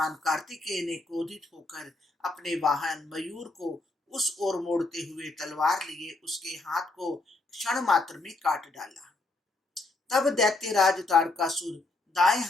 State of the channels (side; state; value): right; quieter; 3.1 dB